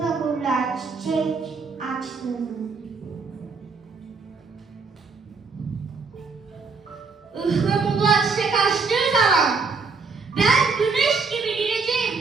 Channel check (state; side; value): quieter; left; 4.7 dB